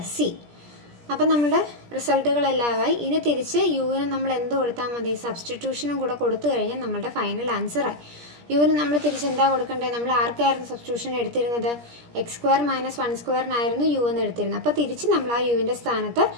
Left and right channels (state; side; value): late; left; 17 ms